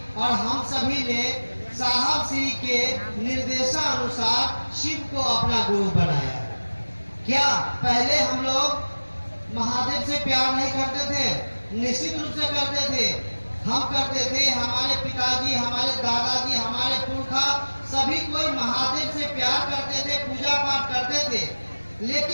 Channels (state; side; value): inverted; both; correlation -1.00